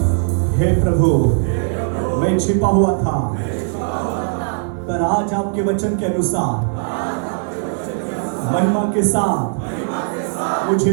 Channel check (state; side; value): silent; left; digital silence